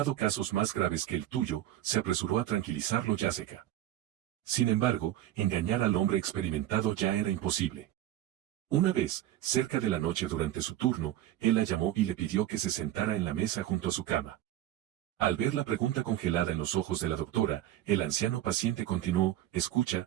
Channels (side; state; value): left; quieter; 13.1 dB